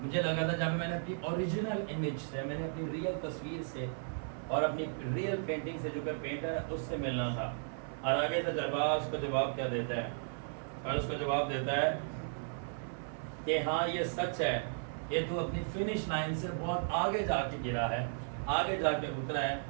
لگا تھا، جہاں پہ میں نے اپنی اوریجنل امیج سے، میں نے اپنی ریئل تصویر سے اور اپنی ریئل پینٹنگ سے جو کہ پینٹر ہے اس سے ملنا تھا۔ اور آگے سے تجربہ اس کو جواب کیا دیتا ہے، اور اس کو جواب دیتا ہے کہ ہاں یہ سچ ہے کہ تو اپنی فنش لائن سے بہت آگے جا کے گرا ہے، آگے جا کے اترا ہے،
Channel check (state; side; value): silent; left; 54 dB below the other